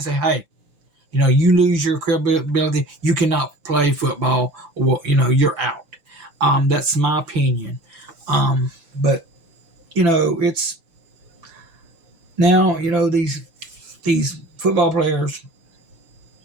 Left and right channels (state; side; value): late; left; 6.8 ms